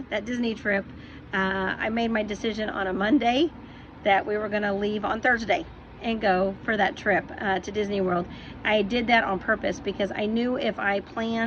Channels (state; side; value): identical; both; correlation 1.00